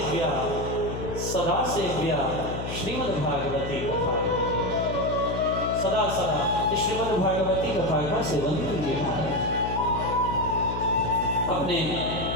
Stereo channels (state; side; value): noise; left; hum, 6 dB below the sound